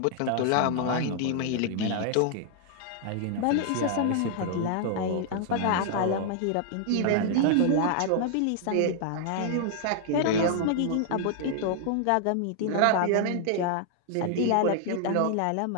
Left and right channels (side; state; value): both; different; correlation 0.00